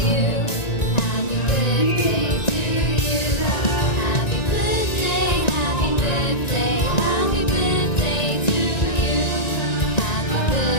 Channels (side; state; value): right; late; 1.9 ms